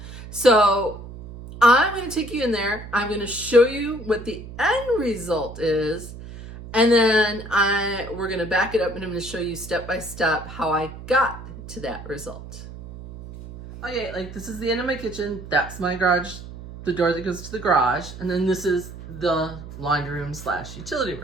So I'm going to take you in there. I'm going to show you what the end result is. And then we're going to back it up, and I'm going to show you step by step how I got to that result. Okay, like this is the end of my kitchen. That's my garage, the door that goes to the garage. And then this is the laundry room / utility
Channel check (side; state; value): right; noise; hum, 13 dB below the sound